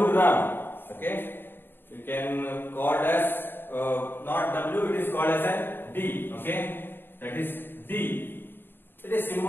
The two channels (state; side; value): late; right; 0.099 ms